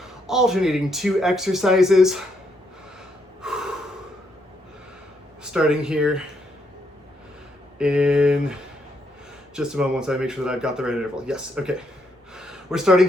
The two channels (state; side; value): normal; both; correlation 0.76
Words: alternating 2 exercises. Starting here in just a moment once I make sure that I've got the right interval. Yes, okay. We're